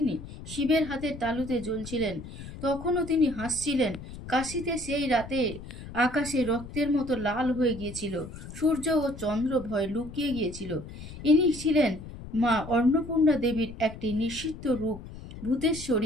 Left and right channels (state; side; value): noise; left; rumble, 13 dB below the sound